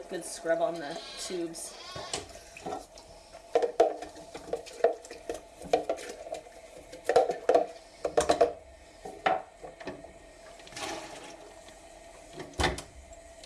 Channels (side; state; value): both; identical; correlation 1.00